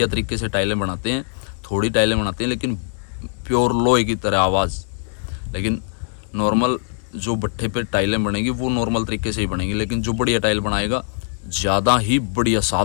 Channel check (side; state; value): right; silent; 65 dB below the other